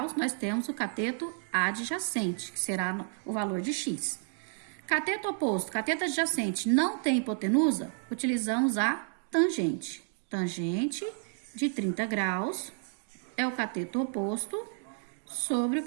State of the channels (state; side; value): silent; left; 57 dB below the other